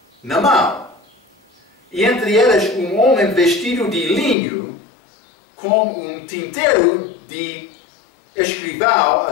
na mão. E entre eles um homem vestido de linho, com um tinteiro de escrivão à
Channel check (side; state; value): right; drops out; at 4.4 s